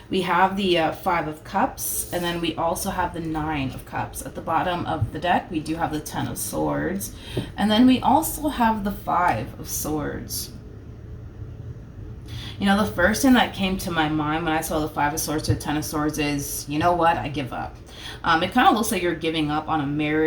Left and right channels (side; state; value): both; identical; correlation 1.00